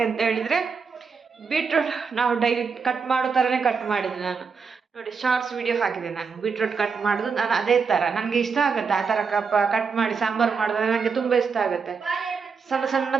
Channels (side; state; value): left; quieter; 5.5 dB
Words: ಹೇಳಿದರೆ ಬೀಟ್ರೋಟ್ ನಾವು ಡೈಲಿ ಕಟ್ ಮಾಡೋ ಥರನೇ ಕಟ್ ಮಾಡಿದೆ ನಾನು. ನೋಡಿ, ಶಾರ್ಟ್ಸ್ ವಿಡಿಯೋ ಹಾಕಿದೆ ನಾನು ಬೀಟ್ರೋಟ್ ಕಟ್ ಮಾಡೋದು. ನಾನು ಅದೇ ಥರ ನನಗೆ ಇಷ್ಟ ಆಗುತ್ತೆ, ಆ ಥರ ಕಟ್ ಮಾಡಿ ಸಾಂಬಾರು ಮಾಡಿದ್ರೆ ನನಗೆ ತುಂಬ ಇಷ್ಟ ಆಗುತ್ತೆ.